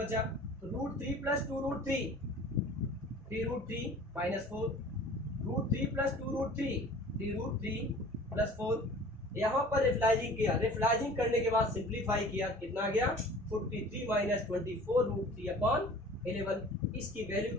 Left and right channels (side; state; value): both; normal; correlation 0.45